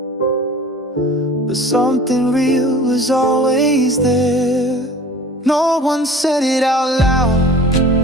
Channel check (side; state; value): both; normal; correlation 0.43